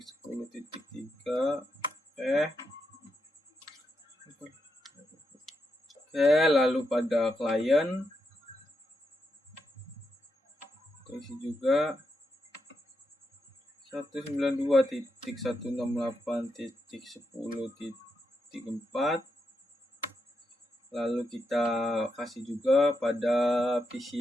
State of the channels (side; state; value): both; normal; correlation 0.84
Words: Oke, lalu pada klien isi juga 192.168.10.4. Lalu kita kasih juga pada